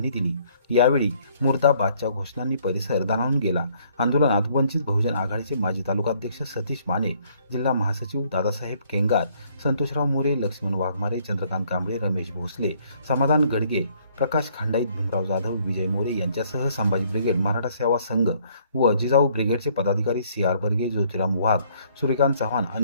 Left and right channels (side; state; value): both; inverted; correlation -0.64